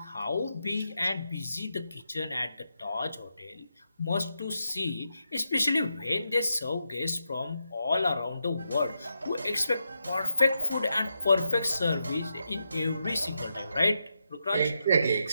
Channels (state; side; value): inverted; both; correlation -0.85